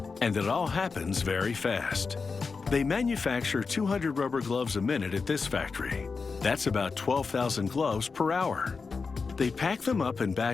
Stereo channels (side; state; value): right; quieter; 4.8 dB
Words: and it all happens very fast. They manufacture 200 rubber gloves a minute at this factory. That's about 12,000 gloves per hour. They pack them up in